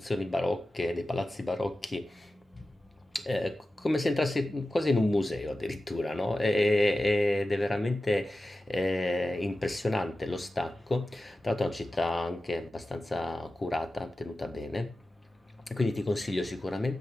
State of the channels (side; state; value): both; normal; correlation 0.94